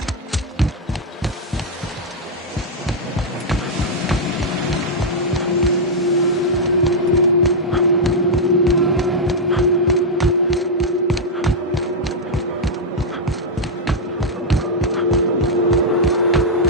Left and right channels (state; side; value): normal; both; correlation -0.04